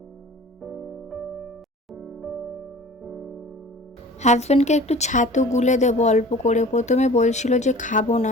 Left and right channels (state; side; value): normal; both; correlation 0.44